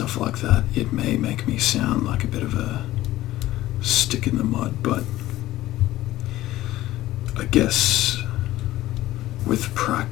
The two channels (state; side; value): quieter; right; 15.6 dB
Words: like that, it may make me sound like a bit of a stick in the mud, but I guess with